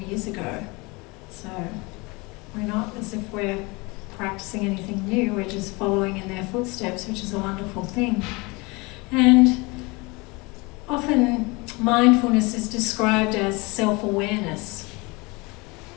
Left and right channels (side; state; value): right; quieter; 26.0 dB